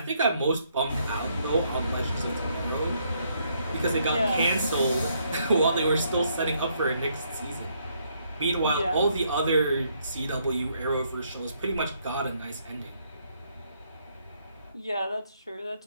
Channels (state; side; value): inverted; both; correlation -0.72